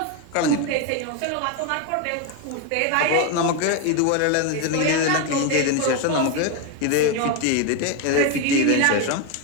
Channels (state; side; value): different; both; correlation 0.02